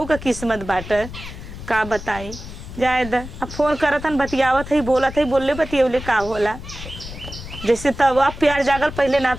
का किस्मत बाटे का बताई जाए द अब फोन करत हन बतियावत है बोलत है बोलले बतियौले का होला जैसे तब अब प्यार जागल पहले ना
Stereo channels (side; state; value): left; noise; rumble, 12 dB below the sound